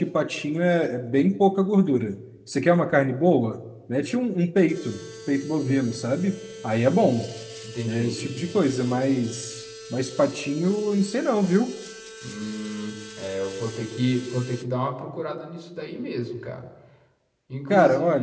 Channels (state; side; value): identical; both; correlation 1.00